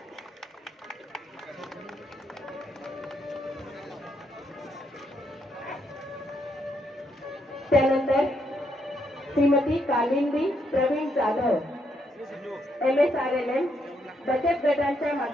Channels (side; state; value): both; normal; correlation 0.76